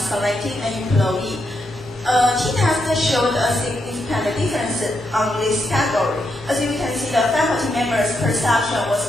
an employee. T-test showed a significant difference on this category. As you can see, the faculty members' perception was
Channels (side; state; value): both; normal; correlation 0.81